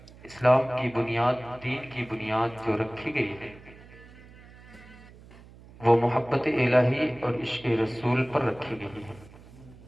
اسلام کی بنیاد دین کی بنیاد جو رکھی گئی ہے وہ محبت الہی اور عشق رسول پر رکھی گئی ہے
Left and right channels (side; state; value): right; noise; hum, 21 dB below the sound